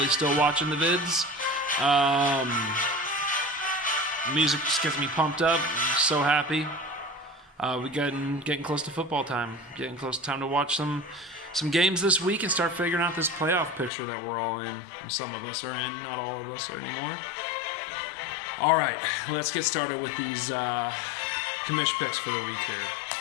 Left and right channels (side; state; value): right; drops out; at 13.9 s